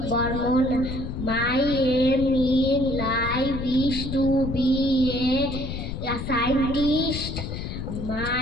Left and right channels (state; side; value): noise; left; rumble, 6 dB below the sound